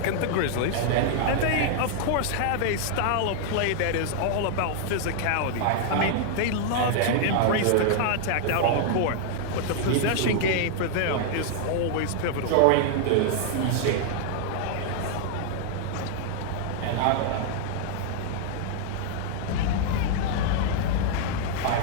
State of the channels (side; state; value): both; different; correlation -0.01